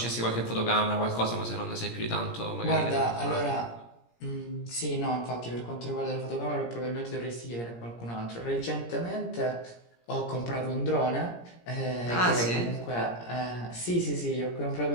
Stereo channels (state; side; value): late; right; 17 ms